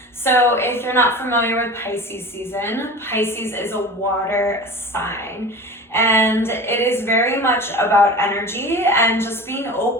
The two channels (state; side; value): normal; both; correlation 0.35